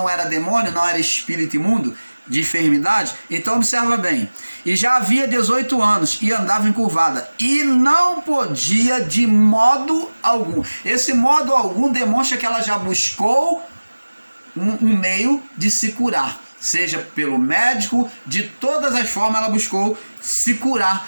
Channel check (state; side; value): inverted; both; correlation -1.00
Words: era demônio, não era espírito imundo de enfermidade, então observa bem. E já havia 18 anos e andava encurvada e não podia de modo algum. Esse modo algum demonstra que ela já buscou um meio de se curar, seja pelo médico, de todas as formas ela buscou se